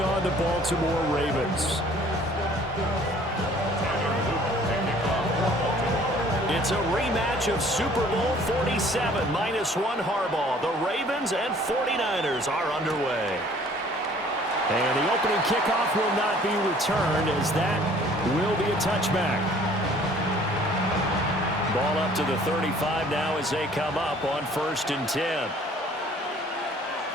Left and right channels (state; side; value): normal; both; correlation 0.55